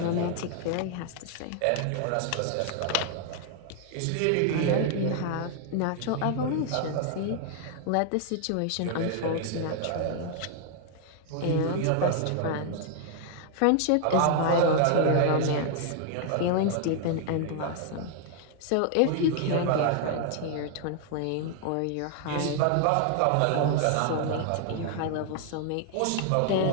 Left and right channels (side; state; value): both; different; correlation 0.00